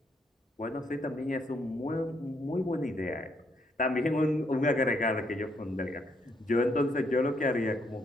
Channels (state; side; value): normal; both; correlation 0.73